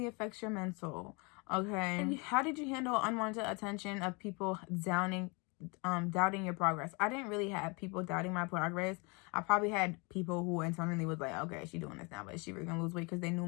affects your mental. Okay. And how did you handle unwanted attention of people doubting your progress? I didn't really have people doubting my progress. I probably had people who internally was like, okay, she doing this now, but is she really gonna lose weight? Because they knew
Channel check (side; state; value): right; quieter; 30.1 dB